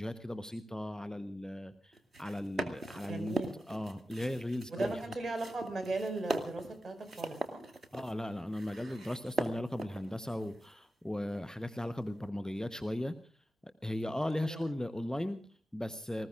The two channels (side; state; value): both; normal; correlation 0.92